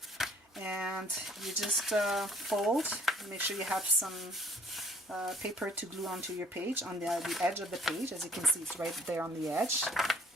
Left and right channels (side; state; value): both; normal; correlation 0.59